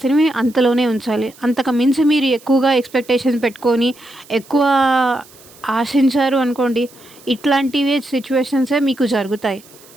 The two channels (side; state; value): right; noise; hiss, 24 dB below the sound